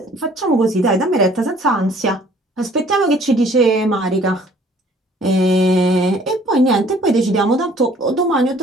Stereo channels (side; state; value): both; normal; correlation 0.56